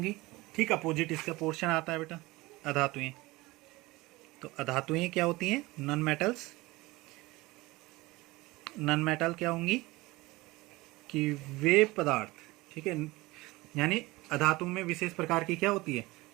ठीक अपोजिट इसका पोर्शन आता है बेटा, अधातुएं। तो अधातुएं क्या होती हैं? नॉन मेटल क्या होंगी? कि वे पदार्थ, ठीक है, यानी अधातु में विशेष प्रकार की क्या होती है,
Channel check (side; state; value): left; quieter; 21.0 dB